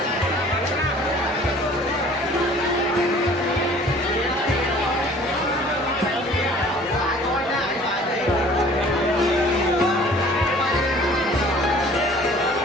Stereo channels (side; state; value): both; normal; correlation 0.51